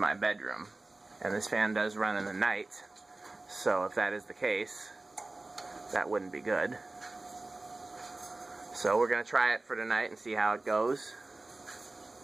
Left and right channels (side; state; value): left; quieter; 3.0 dB